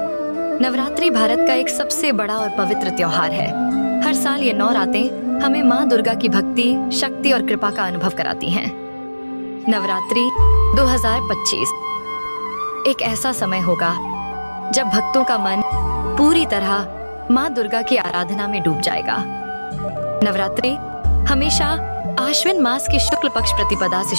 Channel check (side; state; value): both; inverted; correlation -1.00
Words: नवरात्रि भारत का एक सबसे बड़ा और पवित्र त्योहार है। हर साल ये 9 रातें हमें माँ दुर्गा की भक्ति, शक्ति और कृपा का अनुभव कराती हैं। नवरात्रि 2025 एक ऐसा समय होगा जब भक्तों का मन पूरी तरह माँ दुर्गा की आराधना में डूब जाएगा। नवरात्रि हमेशा आश्विन मास की शुक्ल पक्ष प्रतिपदा से